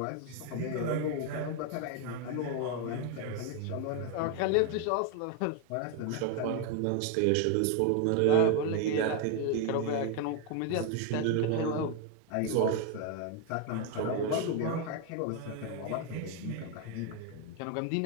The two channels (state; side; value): different; both; correlation 0.01